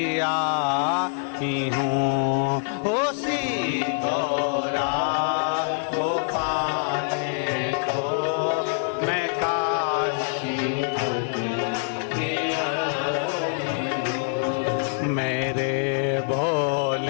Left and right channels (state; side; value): silent; right; 57 dB below the other